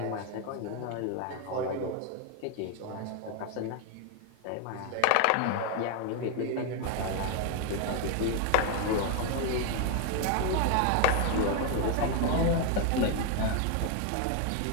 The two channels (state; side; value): different; both; correlation 0.01